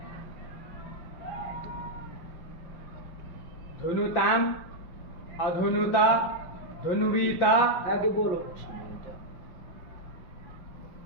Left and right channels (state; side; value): late; right; 5.5 ms